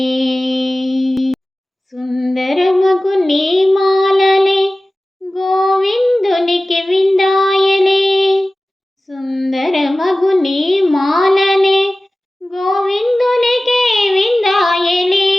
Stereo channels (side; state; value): both; normal; correlation 0.97